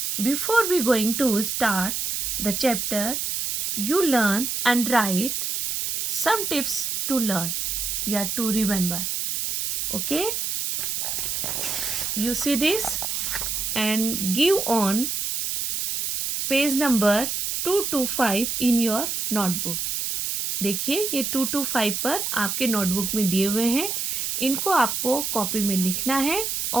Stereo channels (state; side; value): noise; right; hiss, 1 dB below the sound